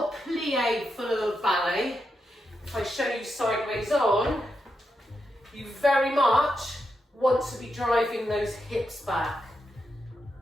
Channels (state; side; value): normal; both; correlation 0.85